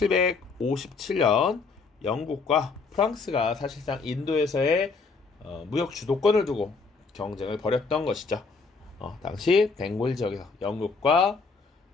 영국과 프랑스가 사실상 인도에서의 무역 주도권을 두고 경쟁을 벌였던 것이죠. 당시 벵골 지역에서 영국과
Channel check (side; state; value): right; quieter; 4.5 dB